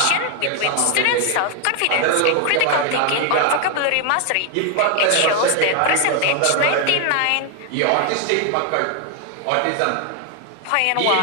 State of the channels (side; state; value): both; different; correlation 0.00